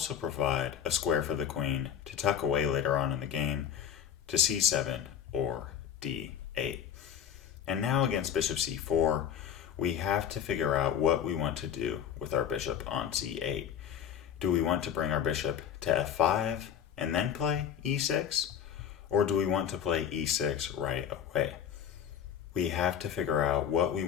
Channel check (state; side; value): quieter; right; 9.0 dB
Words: provide a square for the queen to tuck away later on in the game to c7 or d8. And now against bishop c4, we have to figure out what we want to do with our bishop on c8. Do we want to bring our bishop to f5 and then play e6? Or do we want to play e6 right away? We have to figure out what we